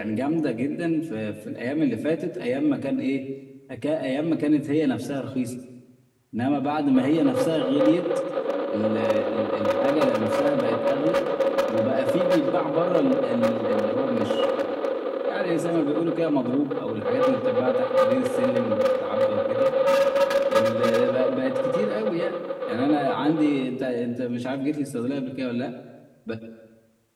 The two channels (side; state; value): both; identical; correlation 1.00